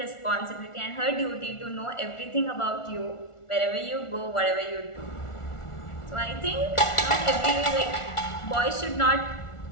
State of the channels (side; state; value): right; late; 1.4 ms